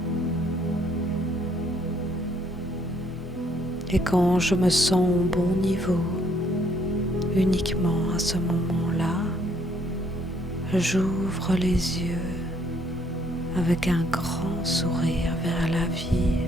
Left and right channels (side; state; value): both; normal; correlation 0.67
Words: Et quand je me sens au bon niveau, uniquement à ce moment-là, j'ouvre les yeux avec un grand sourire vers la vie,